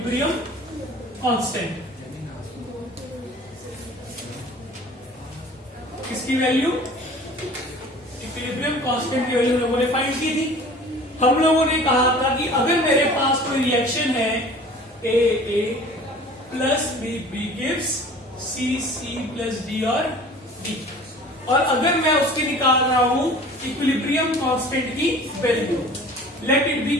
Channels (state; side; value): normal; both; correlation 0.45